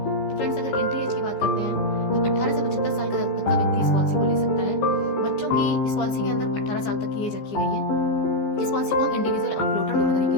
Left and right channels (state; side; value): late; right; 15 ms